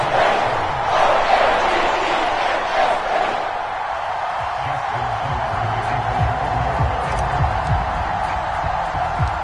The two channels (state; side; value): identical; both; correlation 1.00